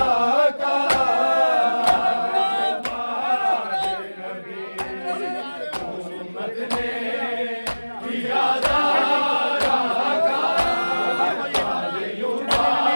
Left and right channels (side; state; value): both; inverted; correlation -1.00